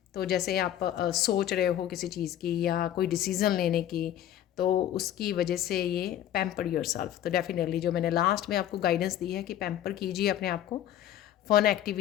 तो जैसे आप सोच रहे हो किसी चीज़ की या कोई डिसीज़न लेने की, तो उसकी वजह से ये पैम्पर योरसेल्फ। तो डेफिनेटली जो मैंने लास्ट में आपको गाइडेंस दी है कि पैम्पर कीजिए अपने आप को फ़न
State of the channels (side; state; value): right; quieter; 11.6 dB